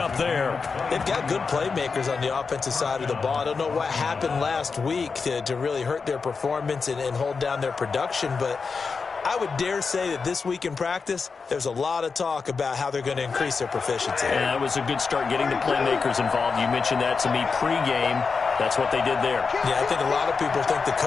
there. They've got good playmakers on the offensive side of the ball. I don't know what happened last week to really hurt their performance and hold down their production, but I would dare say that this week in practice, there's a lot of talk about how they're going to increase their proficiency. Yeah, it was a good start getting the playmakers involved. You mentioned that to me pregame. That's what they did there. Yeah, I think a lot of people think the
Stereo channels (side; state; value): right; quieter; 4.9 dB